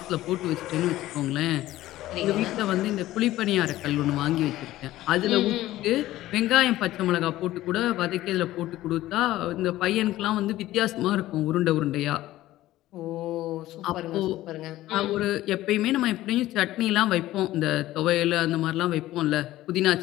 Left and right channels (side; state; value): right; quieter; 15.5 dB